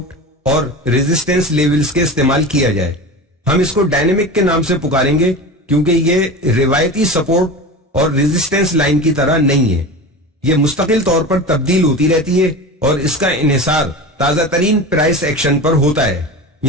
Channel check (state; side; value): normal; both; correlation 0.30